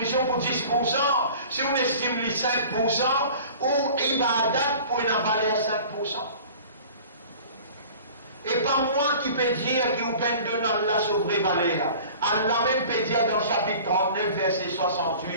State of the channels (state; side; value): inverted; both; correlation -0.44